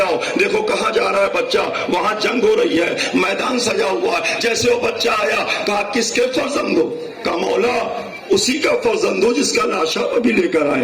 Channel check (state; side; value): identical; both; correlation 1.00